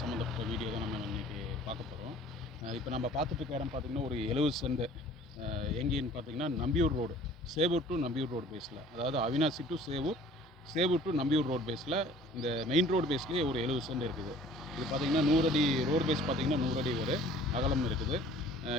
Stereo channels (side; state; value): both; normal; correlation 0.50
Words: சம்மந்தப்பட்ட வீடியோ தான் நம்ம இன்றைக்கி பார்க்க போகிறோம். இப்போ நம்ம பார்த்துட்டு இருக்க இடம் பார்த்திங்கன்னா ஒரு 70 சென்ட். எங்கேன்னு பார்த்திங்கன்னா Nambiyur road, Sevur to Nambiyur road பேஸில், அதாவது Avinashi to Sevur, Sevur to Nambiyur road பேஸில், இந்த மெயின் ரோடு பேஸ்லேயே ஒரு 70 சென்ட் இருக்குது. இது பார்த்திங்கன்னா 100 அடி ரோடு பேஸ், பார்த்திங்கன்னா 100 அடி ஒரு அகலம் இருக்குது.